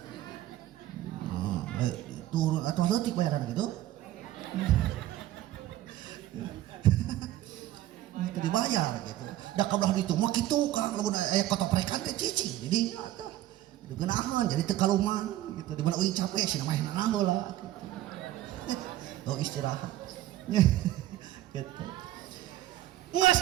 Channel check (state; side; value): quieter; left; 14.2 dB